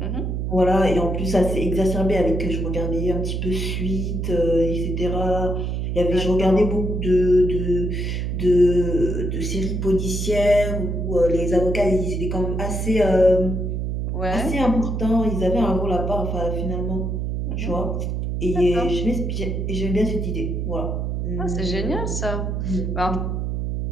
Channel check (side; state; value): right; noise; hum, 2 dB below the sound